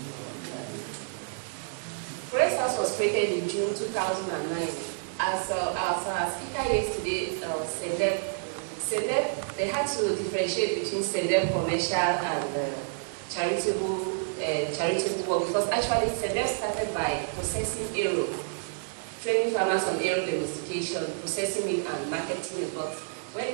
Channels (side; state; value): left; silent; digital silence